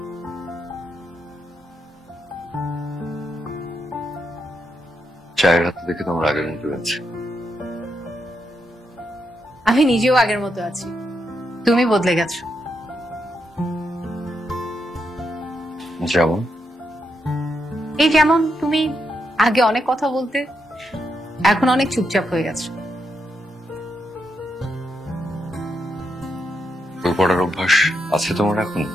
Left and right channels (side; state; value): both; normal; correlation 0.82